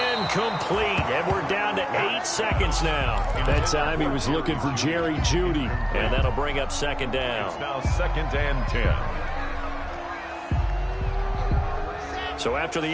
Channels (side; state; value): both; identical; correlation 1.00